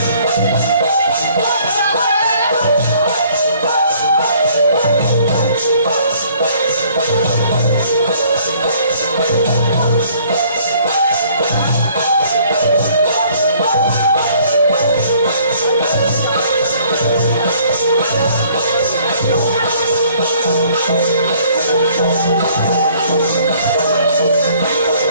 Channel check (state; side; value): inverted; both; correlation -0.59